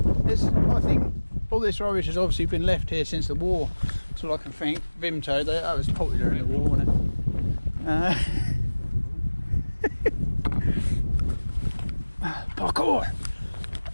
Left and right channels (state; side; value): inverted; both; correlation -1.00